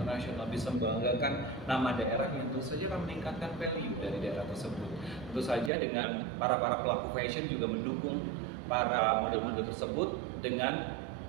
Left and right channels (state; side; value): drops out; left; at 5.7 s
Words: bisa membanggakan nama daerahnya, tentu saja akan meningkatkan value dari daerah tersebut. Tentu saja dengan para pelaku fashion juga mendukung para model-model tersebut dengan